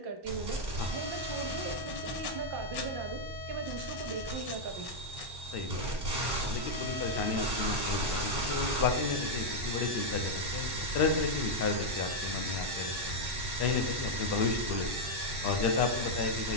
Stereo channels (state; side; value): late; left; 1.1 ms